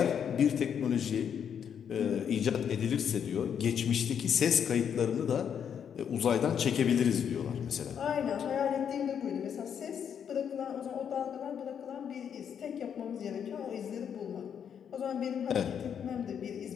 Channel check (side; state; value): right; quieter; 8.1 dB